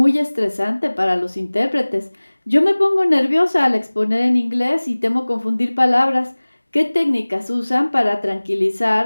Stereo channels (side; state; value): both; inverted; correlation -1.00